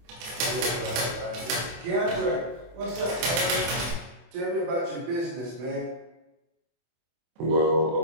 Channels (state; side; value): late; left; 24 ms